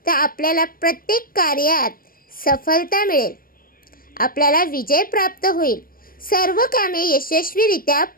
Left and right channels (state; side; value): late; right; 0.42 ms